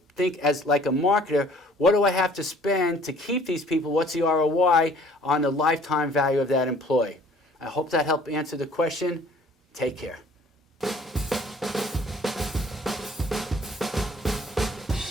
think as like a marketer, what do I have to spend to keep these people? What's the ROI on the lifetime value of that employee? I hope that helped answer the question. Take care.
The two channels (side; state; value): both; normal; correlation 0.54